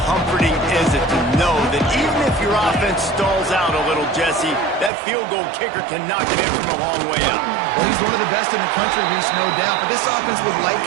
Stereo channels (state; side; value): drops out; left; at 4.9 s